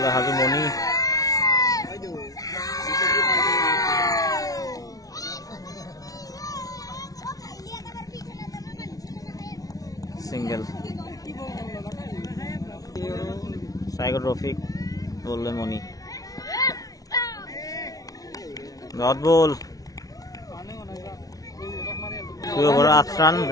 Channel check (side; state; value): right; late; 0.18 ms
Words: হাজু মণি। সিঙ্গল। স্ট্ৰাইকত ৰফিক, বললে মণি। ডট বল, 2 ওভাৰত 8 ৰান।